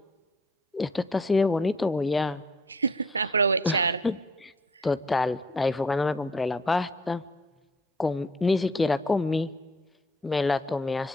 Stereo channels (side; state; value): both; normal; correlation 0.57